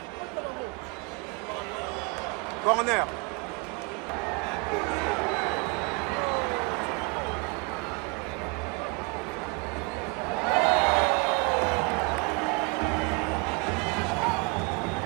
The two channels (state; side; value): quieter; left; 30.2 dB